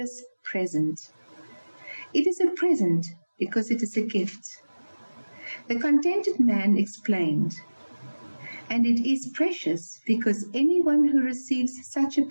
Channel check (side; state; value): both; inverted; correlation -1.00